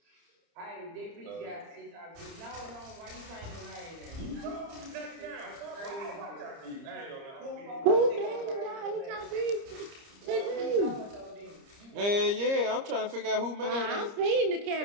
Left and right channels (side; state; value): left; late; 30 ms